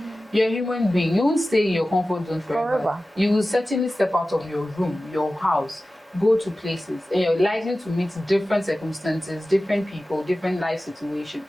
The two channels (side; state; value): both; normal; correlation 0.95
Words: You're a human being. You won't stay in your comfort zone forever. You will certainly step out of your room, your house, go to places, and you're likely to meet different circumstances, different people, different life